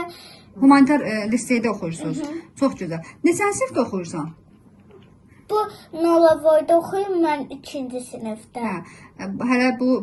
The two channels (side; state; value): both; identical; correlation 1.00